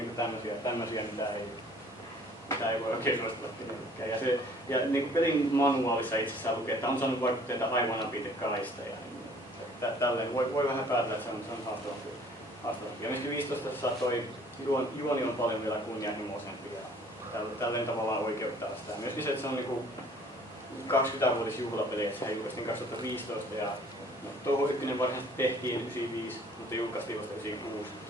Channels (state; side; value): normal; both; correlation 0.55